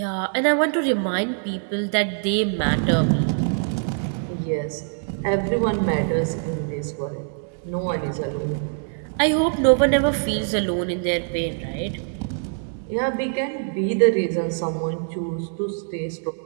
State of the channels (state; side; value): silent; left; digital silence